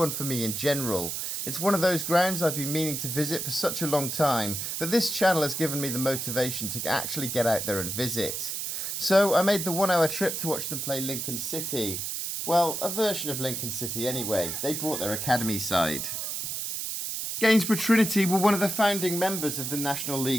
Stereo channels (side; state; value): right; noise; hiss, 3 dB below the sound